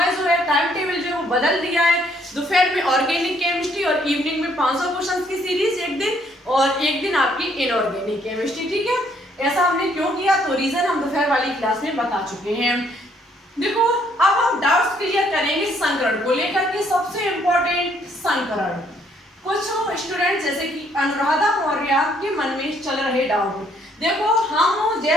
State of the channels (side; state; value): both; normal; correlation 0.67